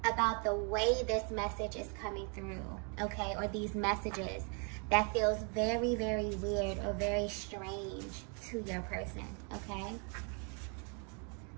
about the way this message is coming through, okay, or these messages, that feels very, very weird or very strange to your person, okay?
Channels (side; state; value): left; quieter; 37.9 dB